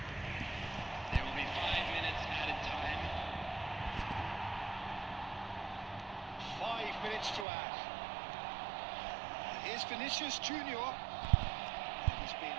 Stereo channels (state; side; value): drops out; left; at 7.5 s